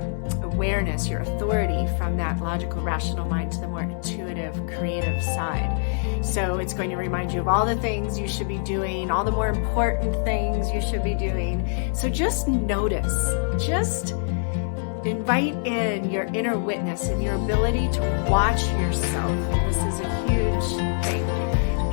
awareness, your authority from that logical, rational mind to the more intuitive, creative side. So it's going to remind you of all the things you should be doing, all the more important things you should be doing. So just notice, just invite in your inner witness and your ability to watch yourself. This is a huge thing,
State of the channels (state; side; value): silent; right; digital silence